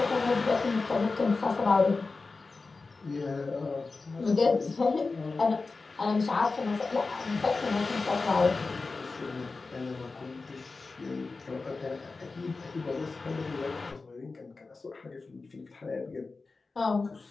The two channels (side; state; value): right; quieter; 3.9 dB